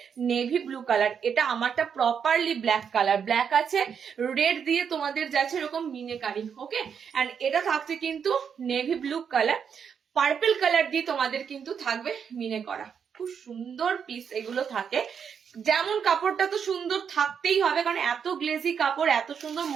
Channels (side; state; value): left; quieter; 7.1 dB